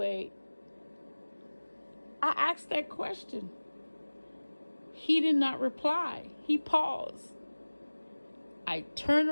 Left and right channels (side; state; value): both; inverted; correlation -1.00